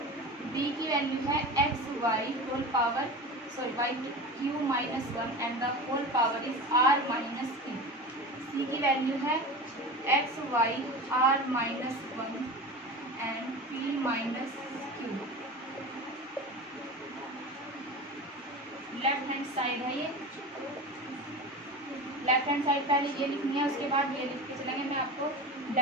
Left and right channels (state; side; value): normal; both; correlation 0.30